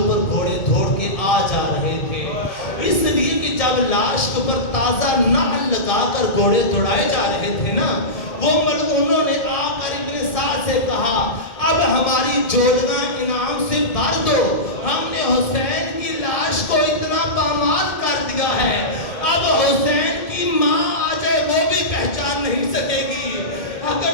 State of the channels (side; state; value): right; late; 1.7 ms